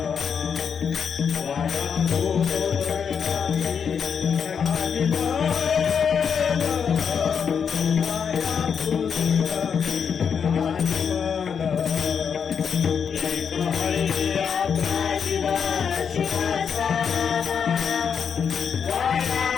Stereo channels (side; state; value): right; quieter; 7.0 dB